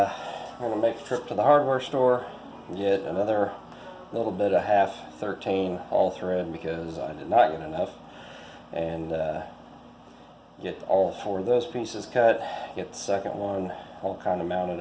going to make a trip to the hardware store, get another little bit of half 13 all thread because I did not get enough, and get all 4 of those pieces cut, get the second one all kind of mounted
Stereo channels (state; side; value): identical; both; correlation 1.00